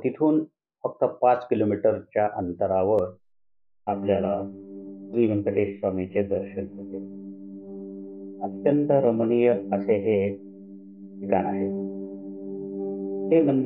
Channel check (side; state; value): both; identical; correlation 1.00